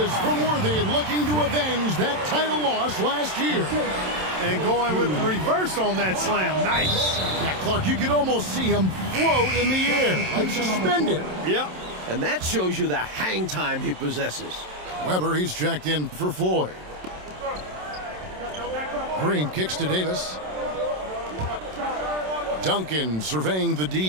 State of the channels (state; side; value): late; left; 27 ms